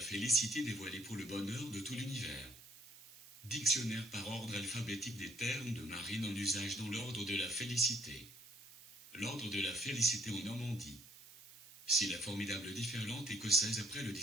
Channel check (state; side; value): noise; right; hiss, 19 dB below the sound